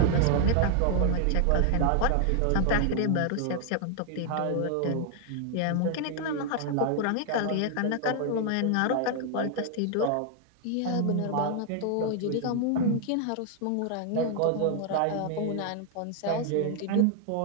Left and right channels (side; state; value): both; different; correlation 0.00